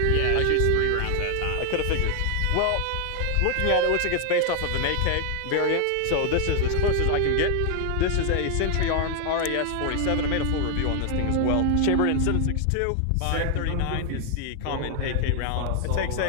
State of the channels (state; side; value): different; both; correlation 0.00